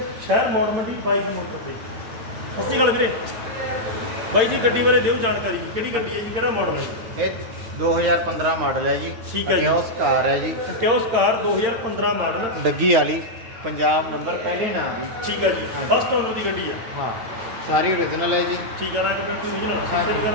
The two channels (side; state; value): left; late; 8.8 ms